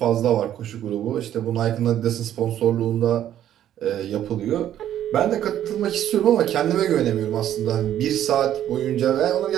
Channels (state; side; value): quieter; left; 11.3 dB